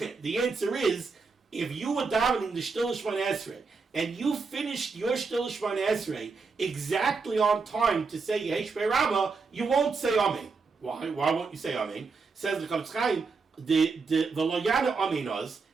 The answer is, if you were davening the Shtil Shmon Esrei, and you finished your Shtil Shmon Esrei exactly on time to say Yehei Shmei Rabbah, you won't say Amen. Why? Why won't you say Amen? Says the Chavetz Chaim, the Lo Yana Amen Oz.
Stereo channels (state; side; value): quieter; left; 4.6 dB